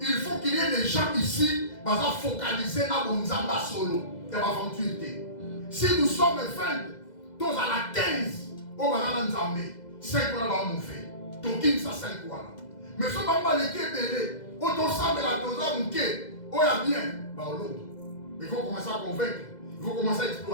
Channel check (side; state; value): right; late; 2.0 ms